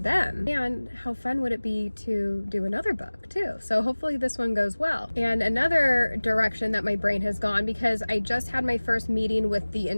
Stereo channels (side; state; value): both; inverted; correlation -1.00